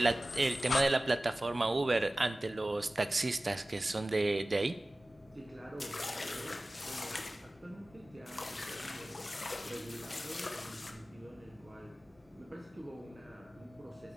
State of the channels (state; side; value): normal; both; correlation 0.97